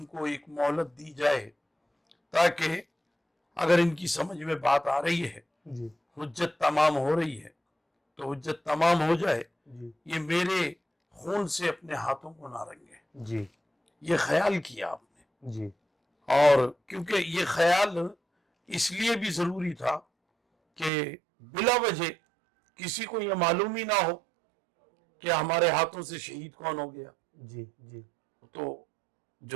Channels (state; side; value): drops out; left; at 20.9 s